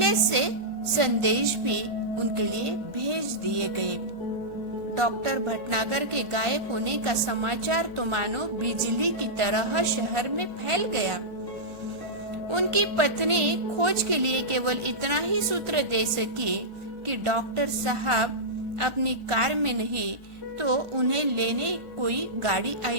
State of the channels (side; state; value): left; late; 1.5 ms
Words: से संदेश भी उनके लिए भेज दिए गए। डॉक्टर भटनागर के गायब होने का समाचार तो मानो बिजली की तरह शहर में फैल गया। उनकी पत्नी खोज के लिए केवल इतना ही सूत्र दे सकी कि डॉक्टर साहब अपनी कार में नहीं तो उन्हें लेने कोई गाड़ी